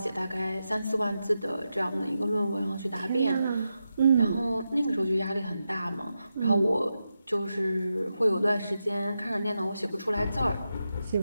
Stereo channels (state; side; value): inverted; both; correlation -0.89